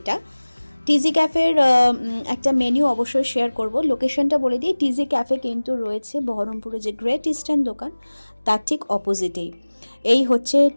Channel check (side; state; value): both; inverted; correlation -1.00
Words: টিজি ক্যাফের একটা মেনু অবশ্যই শেয়ার করব, লোকেশনটা বলে দিই। টিজি ক্যাফে কিন্তু রয়েছে বহরমপুরে যে গ্রেট ইস্টার্ন দোকান, তার ঠিক অপোজিটেই। এই হচ্ছে